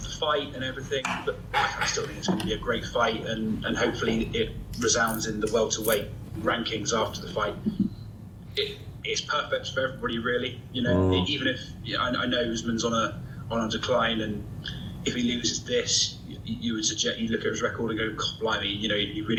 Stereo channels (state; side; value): identical; both; correlation 1.00